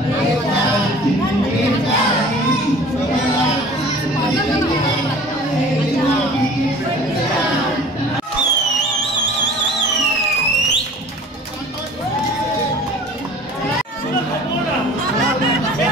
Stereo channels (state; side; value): normal; both; correlation 0.46